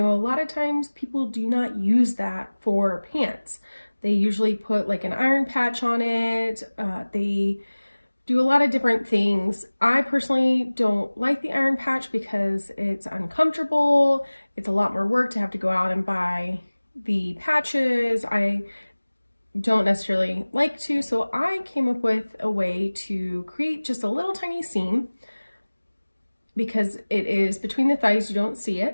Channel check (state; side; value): inverted; both; correlation -1.00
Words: a lot of times people do not use that for pants. They usually put like an iron patch on it. They do a lot of different things. I personally don't like the iron patch because it's uncomfortable. It's a lot more work to have to go out and buy the patches. I don't necessarily like to, so I came up with a way to create just a little tiny seam because it is between the thighs, you don't see